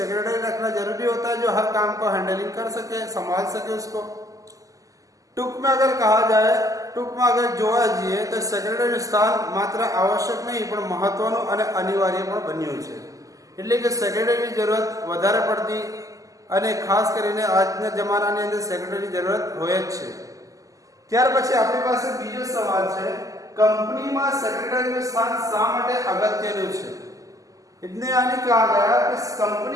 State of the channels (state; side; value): late; left; 0.17 ms